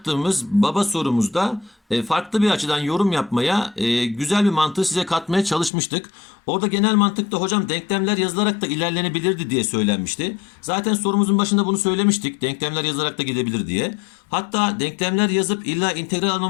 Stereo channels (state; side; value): drops out; right; at 5.7 s